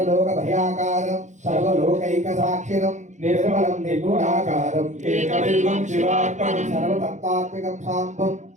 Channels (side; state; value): left; late; 0.35 ms